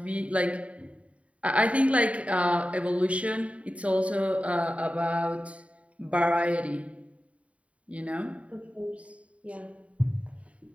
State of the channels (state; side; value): late; left; 0.065 ms